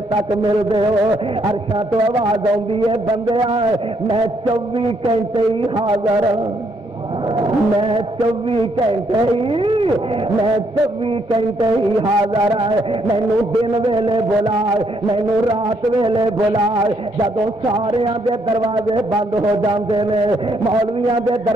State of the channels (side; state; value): both; normal; correlation 0.72